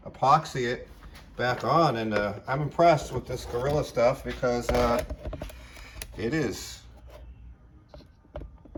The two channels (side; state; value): both; identical; correlation 1.00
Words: epoxy it back on, and I'm impressed with this Gorilla stuff because that is